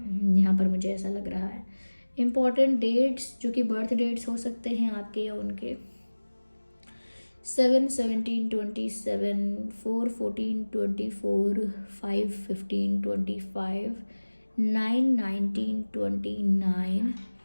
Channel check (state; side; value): inverted; both; correlation -1.00